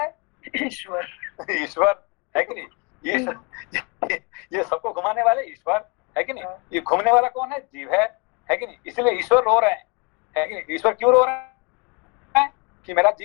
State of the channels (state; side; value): quieter; right; 30.8 dB